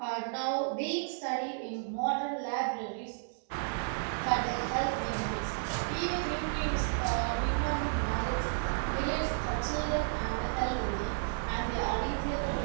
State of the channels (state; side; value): silent; left; digital silence